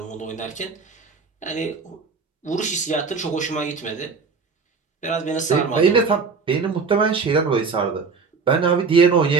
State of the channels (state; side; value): quieter; left; 5.0 dB